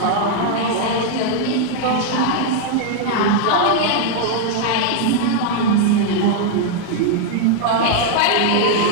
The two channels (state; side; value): different; both; correlation -0.01